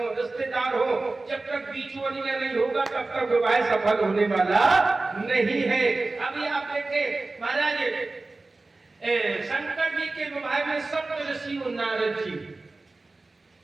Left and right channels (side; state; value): left; quieter; 3.3 dB